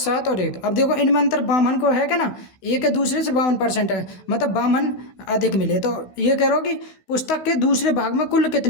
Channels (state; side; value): late; right; 16 ms